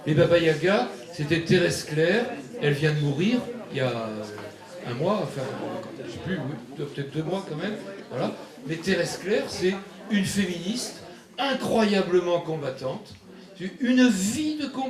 Les Baba Yaga, c'était Thérèse Claire, elle vient de mourir il y a un mois, enfin, je ne sais plus, oui, peut-être 2 mois quand même, voilà. Mais Thérèse Claire, c'est une féministe incroyablement combattante, une vie de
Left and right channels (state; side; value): identical; both; correlation 1.00